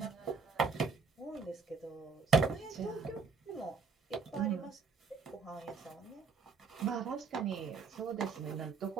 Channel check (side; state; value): left; quieter; 4.9 dB